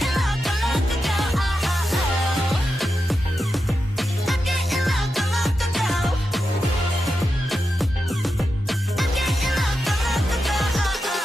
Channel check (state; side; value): normal; both; correlation 0.89